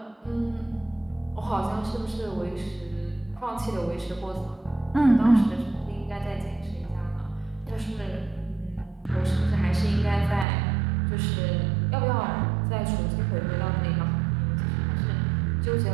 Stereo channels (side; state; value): left; drops out; at 10.5 s